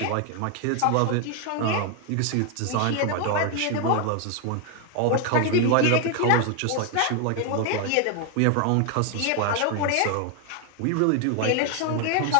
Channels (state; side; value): different; both; correlation 0.01